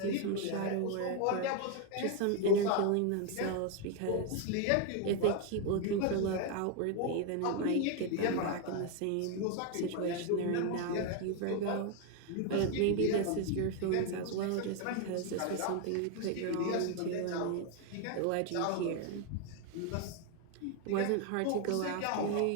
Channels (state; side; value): different; both; correlation 0.01